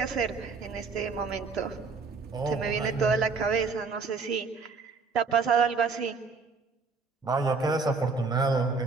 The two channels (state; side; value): quieter; left; 4.6 dB